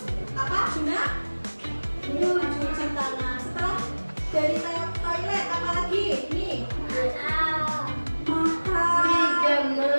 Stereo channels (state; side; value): inverted; both; correlation -1.00